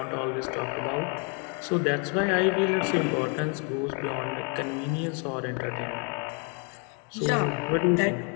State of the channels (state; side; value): quieter; right; 36.2 dB